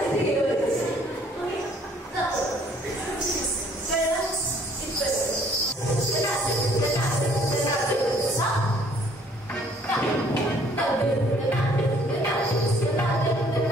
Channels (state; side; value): normal; both; correlation 0.60